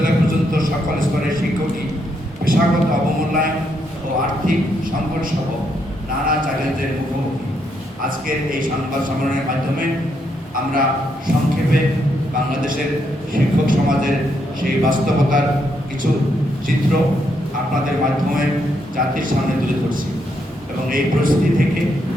পর্যন্ত সকল স্তরের শিক্ষকই পেশাগত অবমূল্যায়ন ও আর্থিক সংকট সহ নানা চ্যালেঞ্জের মুখোমুখি। আজকের এই সংবাদ সম্মেলনের মাধ্যমে আমরা সংক্ষেপে বাংলাদেশের শিক্ষক সমাজের সেই বাস্তবতার কিছু চিত্র আপনাদের মাধ্যমে জাতির সামনে তুলে ধরছি এবং এই পরিস্থিতি থেকে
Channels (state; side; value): normal; both; correlation 0.77